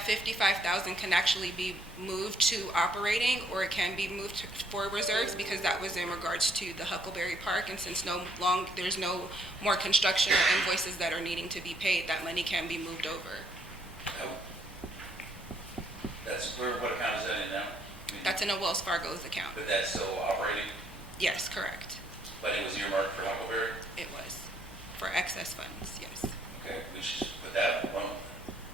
55,000 can actually be moved to operating, or it can be moved for reserves, because that was in regards to the Huckleberry Park. And since there's no more construction or invoices that are needing to be paid, that money can be moved over. That's, what account is that in now? That's in a Wells Fargo's account. But that's still operating, Yes, correct. but it was earmarked for Huckleberry? It was for excess funds, yes. Okay, we should just put that alone.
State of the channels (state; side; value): normal; both; correlation 0.68